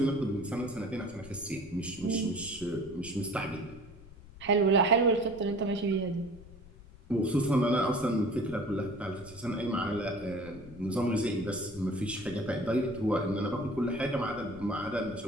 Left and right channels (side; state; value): left; noise; rumble, 19 dB below the sound